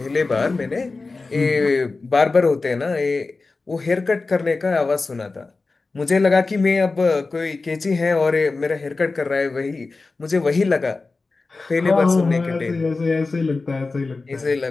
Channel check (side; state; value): right; quieter; 3.8 dB